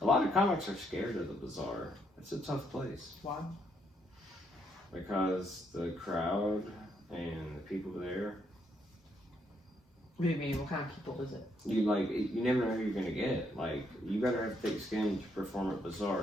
A lot of comics are scared of the Bazaar. It's a tough place. Why? Because the crowd and the people there, What do you mean? What kind of people is it? you never know who you're gonna get. Like, you better have thick skin to perform at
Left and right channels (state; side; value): normal; both; correlation 0.74